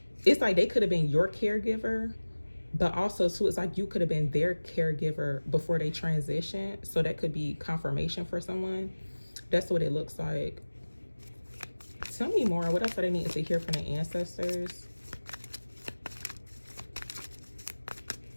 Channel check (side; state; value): both; inverted; correlation -1.00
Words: it's like they could have been your caregiver, but also too, it's like you could have been their caregiver before they transition. So that could be confirmation for someone. That's what it looks like. Tell me more. What else are they needing to hear from the ancestors?